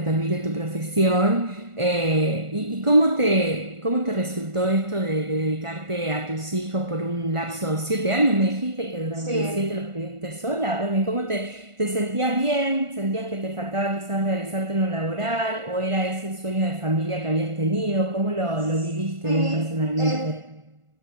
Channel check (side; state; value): left; late; 1.5 ms